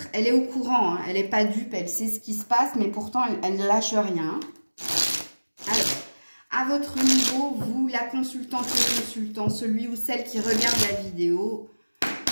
elle est au courant, elle n'est pas dupe, elle sait ce qui se passe, mais pourtant, elle ne lâche rien. Alors, à votre niveau, vous, la consultante, le consultant, celui ou celle qui regarde la vidéo,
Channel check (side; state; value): both; inverted; correlation -1.00